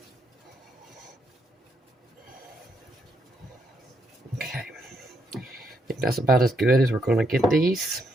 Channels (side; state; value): both; normal; correlation 0.77